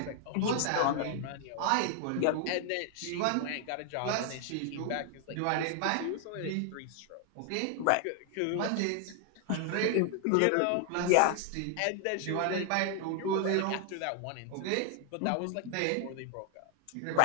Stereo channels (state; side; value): different; both; correlation 0.00